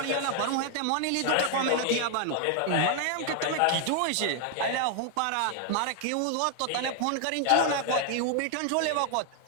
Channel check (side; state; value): both; different; correlation 0.00